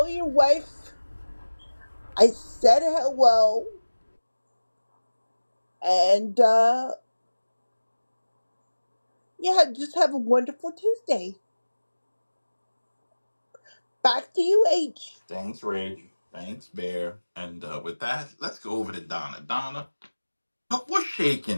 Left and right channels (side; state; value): both; inverted; correlation -1.00